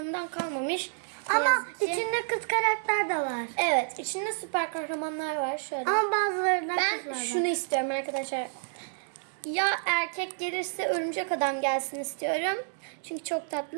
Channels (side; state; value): left; silent; 58 dB below the other